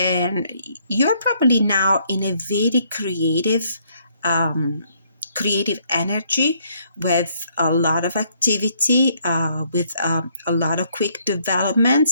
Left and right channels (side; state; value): both; inverted; correlation -0.69